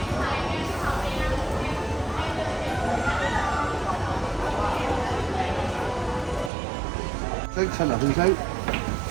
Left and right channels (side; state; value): left; drops out; at 6.5 s